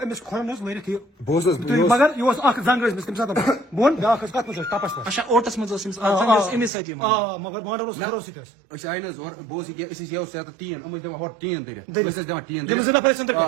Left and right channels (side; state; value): left; drops out; at 6.7 s